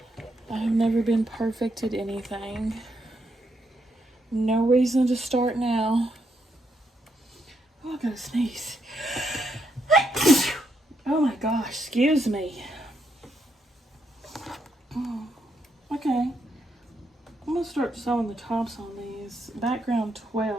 I have never been perfect at anything. No reason to start now. Oh, I gotta sneeze. Oh my gosh, excuse me. Okay, I'm gonna start sewing the tops on these. Background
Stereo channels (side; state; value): both; normal; correlation 0.79